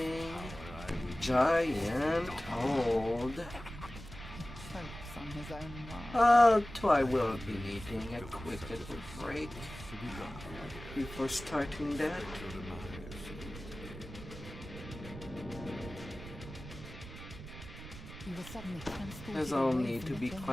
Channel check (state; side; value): noise; right; rumble, 13 dB below the sound